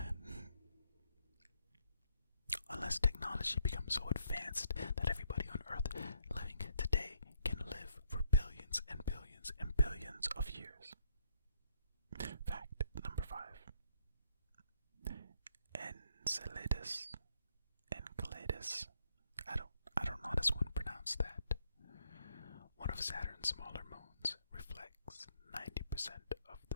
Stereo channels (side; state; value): both; inverted; correlation -0.72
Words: Unless technology becomes so advanced that everybody on Earth living today can live for billions and billions and billions of years. Fact number 5. Enceladus. I don't know how this one pronounced that. One of Saturn's smaller moons reflects 90% of